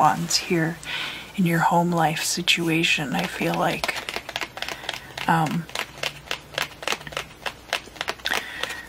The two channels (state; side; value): identical; both; correlation 1.00